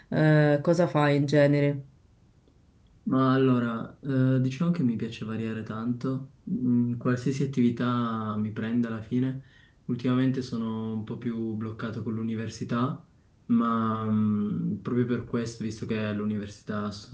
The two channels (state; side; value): identical; both; correlation 1.00